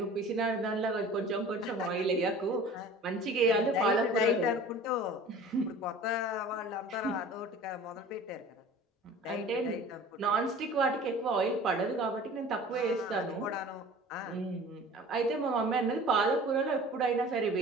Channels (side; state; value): both; normal; correlation 0.43